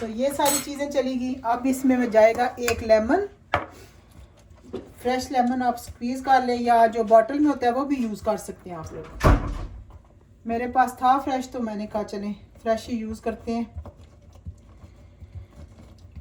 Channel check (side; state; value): both; identical; correlation 1.00